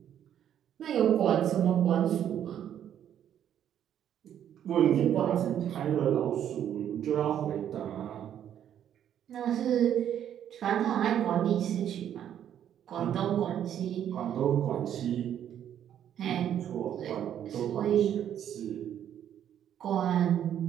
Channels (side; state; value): left; quieter; 10.0 dB